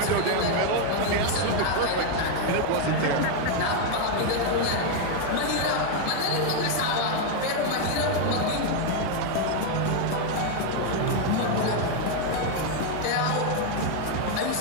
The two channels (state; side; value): different; both; correlation 0.01